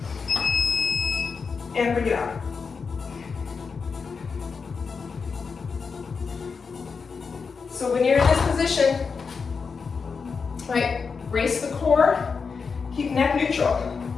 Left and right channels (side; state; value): right; quieter; 5.3 dB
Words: and bring it out. So when you're in this position, right, brace the core, keep neck neutral.